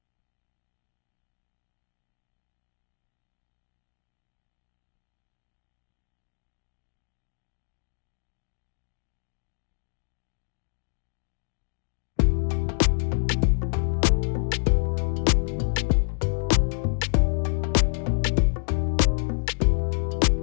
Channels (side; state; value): right; silent; digital silence